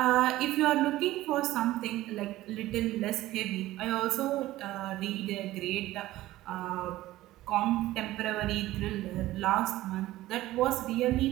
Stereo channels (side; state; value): left; quieter; 16.1 dB